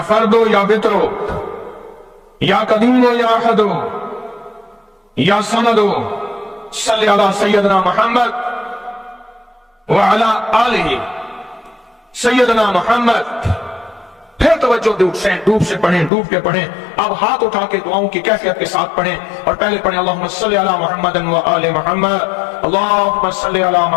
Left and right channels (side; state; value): right; drops out; at 16.1 s